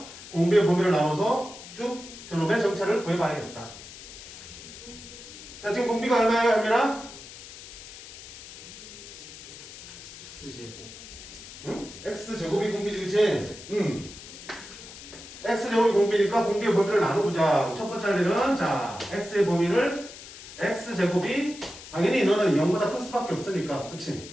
공비의 범위를 나눠서 쭉 저놈의 정차를 구해봐야겠다. 자, 지금 공비가 얼마예요, 현민아? x제곱이 공비지, 그치? x제곱이 공비니까 공비의 범위를 나눠보자. 첫 번째 할 일은 자, x의 범위를 x제곱이 당연히 너는 0보다 클 수밖에 없으니까, 그치?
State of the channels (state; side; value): noise; left; hiss, 15 dB below the sound